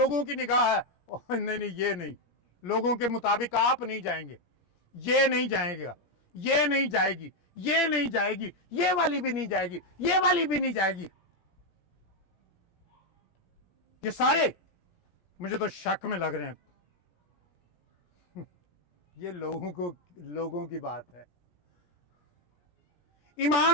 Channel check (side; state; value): right; late; 17 ms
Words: की निगाह है, नहीं नहीं ये नहीं, लोगों के मुताबिक आप नहीं जाएंगे, ये नहीं जाएगा, ये नहीं जाएगी, ये नहीं जाएगी, ये वाली भी नहीं जाएगी, ये वाली भी नहीं जाएगी। ये सारे मुझे तो शक में लग रहे हैं। ये लोगों की बात है।